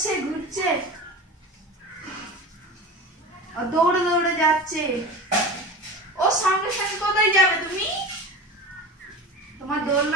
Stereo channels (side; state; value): both; normal; correlation 0.32